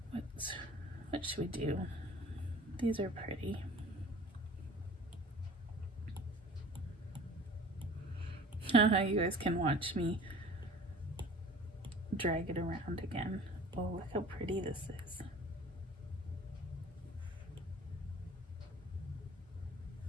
What should we do? These are pretty. You guys can watch me drag it around again. Oh, look how pretty this is.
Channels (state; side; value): normal; both; correlation 0.45